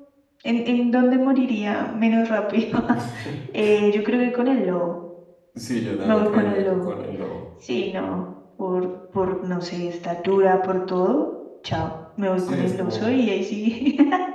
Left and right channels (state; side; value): identical; both; correlation 1.00